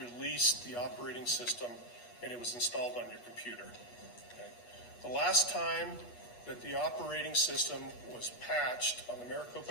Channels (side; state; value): right; late; 8.3 ms